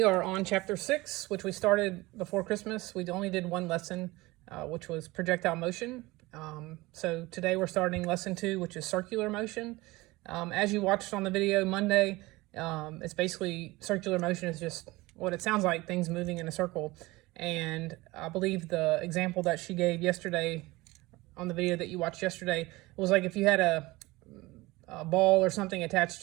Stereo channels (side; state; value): left; quieter; 20.9 dB